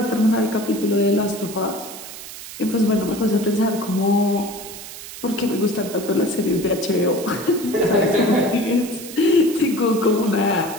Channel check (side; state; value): right; noise; hiss, 13 dB below the sound